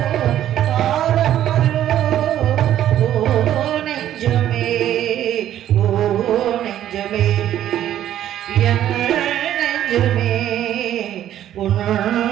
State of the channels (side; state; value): left; quieter; 11.7 dB